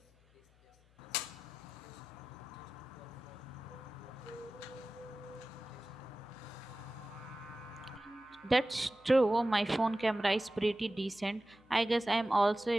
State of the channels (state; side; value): noise; left; hum, 29 dB below the sound